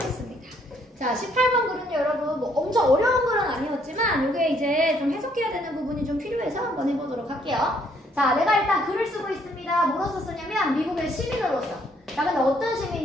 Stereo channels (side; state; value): both; normal; correlation 0.67